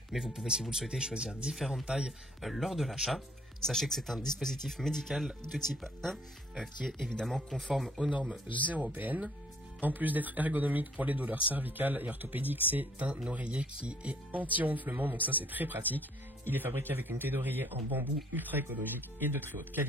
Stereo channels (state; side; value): normal; both; correlation 0.61